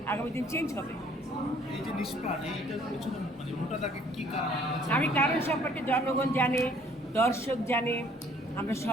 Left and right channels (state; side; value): normal; both; correlation 0.59